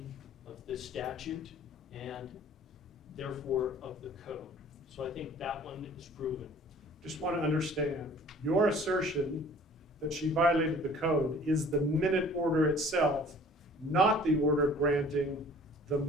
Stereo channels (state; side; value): normal; both; correlation 0.50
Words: of the statute and therefore of the code. So I think that one is proven. Just want to understand, your assertion that she violated the code is the minute order itself, not the order granting the